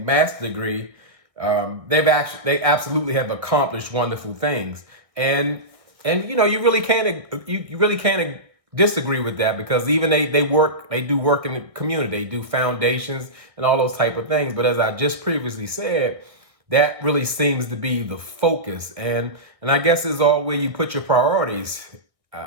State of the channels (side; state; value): left; late; 1.6 ms